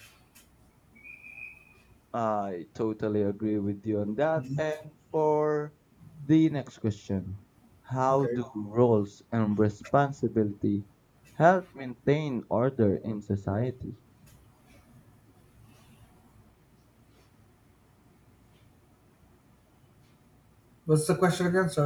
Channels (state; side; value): identical; both; correlation 1.00